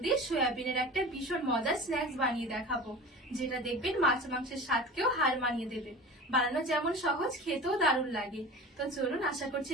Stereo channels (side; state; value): both; normal; correlation 0.35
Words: সয়াবিনের একটা ভীষণ মজার স্ন্যাক্স বানিয়ে দেখাবো, যেটা দেখবেন মাছ মাংসের স্বাদকেও হার মানিয়ে দেবে। বানানো যেমন সহজ, খেতেও দারুণ লাগে। তো চলুন, আশা করছি